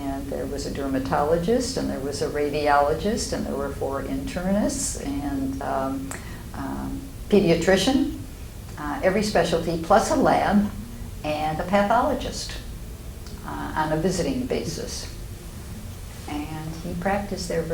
there was a dermatologist, and there was a radiologist, and there were 4 internists, and pediatrician, every specialty, plus a lab, and a pathologist on a visiting basis. And he practiced there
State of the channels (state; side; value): identical; both; correlation 1.00